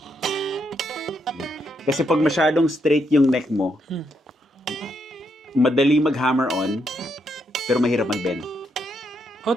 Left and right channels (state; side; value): normal; both; correlation 0.78